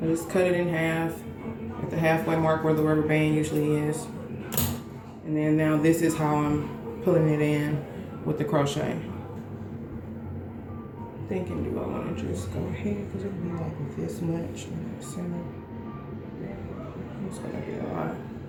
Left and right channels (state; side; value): identical; both; correlation 1.00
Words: I just cut it in half at the halfway mark where the rubber band usually is. And then now this is how I'm pulling it in with the crochet. Thinking, do I want to just go ahead, because it'll be like this much in the center. It's gonna be a lot.